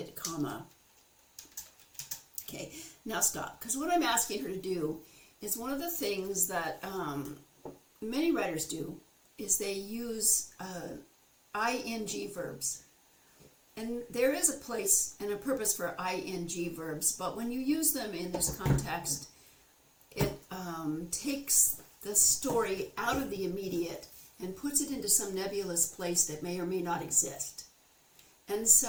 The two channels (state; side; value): identical; both; correlation 1.00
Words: comma. Okay, now stop, because what I'm asking her to do is one of the things that many writers do is they use ing verbs. And there is a place and a purpose for ing verbs, but when you use them in this context, it takes the story out of the immediate and puts it into some nebulous place that may or may not exist. And